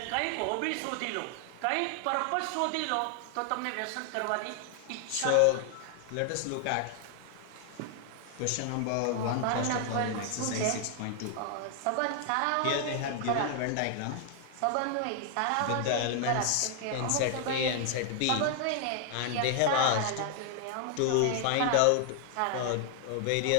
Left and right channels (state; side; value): different; both; correlation 0.00